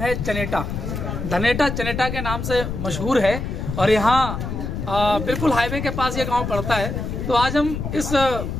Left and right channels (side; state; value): left; noise; rumble, 4 dB below the sound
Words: है चनेटा। धनेटा चनेटा के नाम से मशहूर है और यहाँ बिल्कुल हाईवे के पास ये गांव पड़ता है। तो आज हम इस